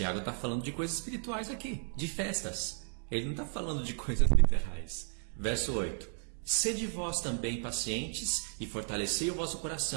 está falando de coisas espirituais aqui, de festas. Ele não está falando de coisas literais. Verso 8. Sede vós também pacientes e fortalecei o vosso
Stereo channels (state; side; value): silent; left; 55 dB below the other